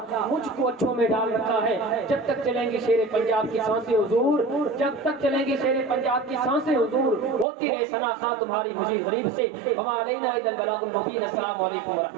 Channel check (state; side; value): drops out; left; at 7.5 s